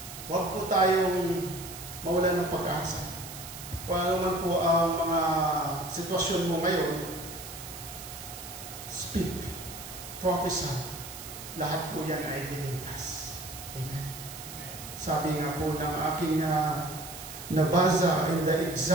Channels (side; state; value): right; noise; hiss, 12 dB below the sound